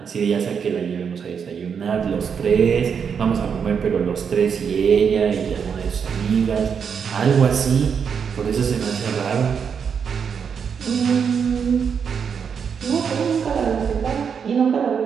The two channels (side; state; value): left; quieter; 6.8 dB